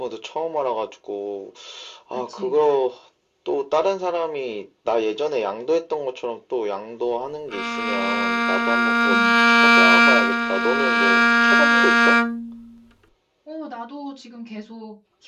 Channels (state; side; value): identical; both; correlation 1.00